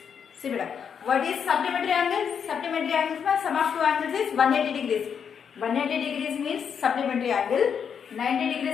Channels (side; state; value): right; quieter; 7.2 dB